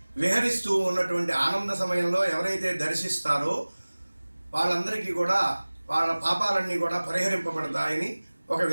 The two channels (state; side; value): inverted; both; correlation -1.00